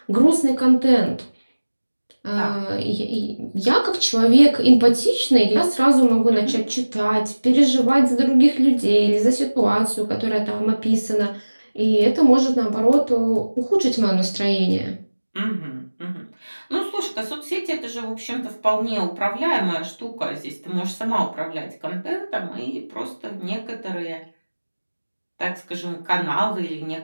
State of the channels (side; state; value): both; inverted; correlation -1.00